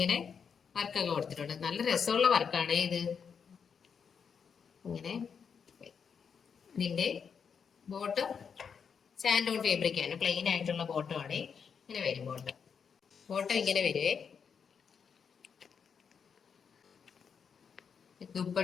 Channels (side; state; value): right; quieter; 6.6 dB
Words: വർക്കൊക്കെ കൊടുത്തിട്ടുണ്ട്. നല്ല രസമുള്ള വർക്കാണ് ഇത്. ഇങ്ങനെ ഇതിന്റെ ബോട്ടം സാൻഡോൺ ഫാബ്രിക് ആണ്. പ്ലെയിൻ ആയിട്ടുള്ള ബോട്ടം ആണ്. ഇങ്ങനെ വരും ബോട്ടം. ബോട്ടം ഇങ്ങനെ വരുവേ.